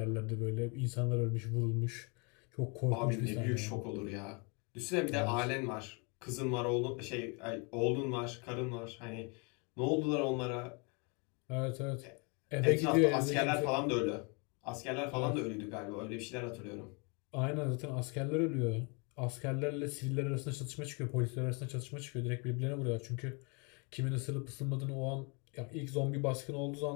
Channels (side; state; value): right; quieter; 33.1 dB